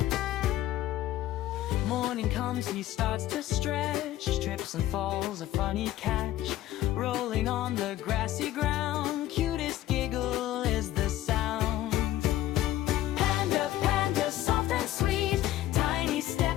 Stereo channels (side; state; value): right; quieter; 14.1 dB